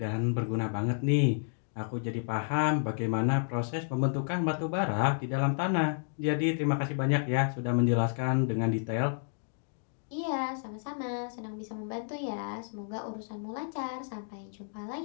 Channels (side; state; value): right; silent; digital silence